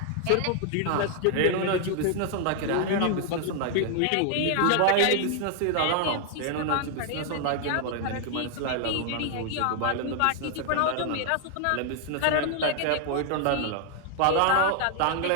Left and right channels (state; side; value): different; both; correlation 0.00